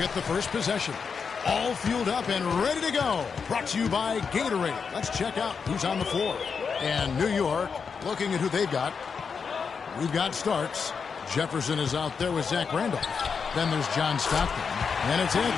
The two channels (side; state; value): right; quieter; 5.8 dB